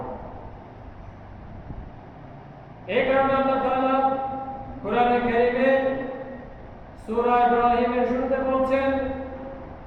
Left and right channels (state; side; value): identical; both; correlation 1.00